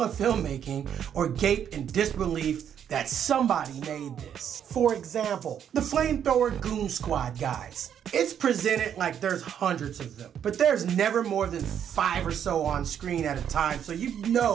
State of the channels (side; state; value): left; quieter; 8.9 dB